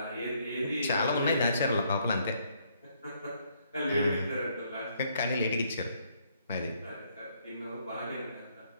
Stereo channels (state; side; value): inverted; both; correlation -0.70